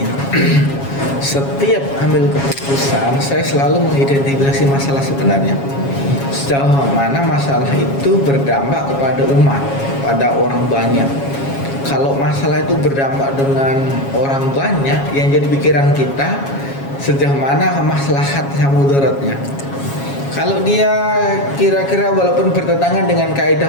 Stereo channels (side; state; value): right; late; 7.3 ms